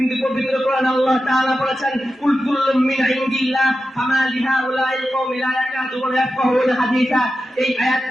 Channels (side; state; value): both; normal; correlation 0.91